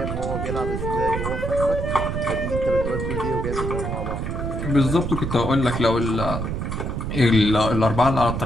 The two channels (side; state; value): right; noise; rumble, 3 dB below the sound